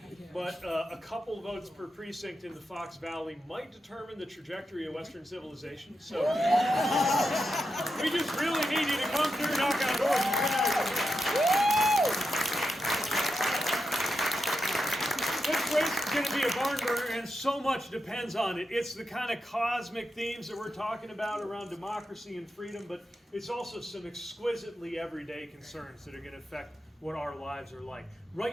but a couple votes per precinct in the Fox Valley might determine the trajectory of Western civilization. So we just really need you to come through, knock on doors, and turn out. This race is going to be a barn burner, and so much depends on it. It's the kind of cosmic themes that we're talking about around democracy and freedom, but it's also some exquisitely everyday concerns that are going to affect what our lives are like.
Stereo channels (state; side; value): normal; both; correlation 0.87